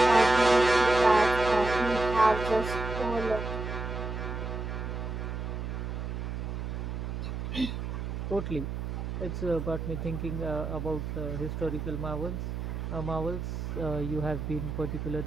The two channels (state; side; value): noise; right; hum, 4 dB below the sound